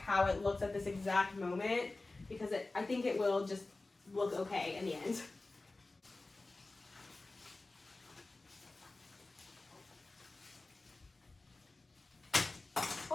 it looks at this exact moment because I think it will just look okay in the end.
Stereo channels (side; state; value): right; quieter; 3.2 dB